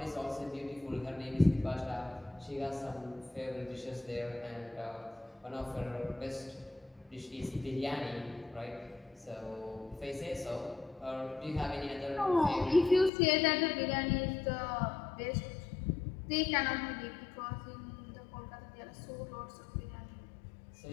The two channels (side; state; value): right; drops out; at 13.1 s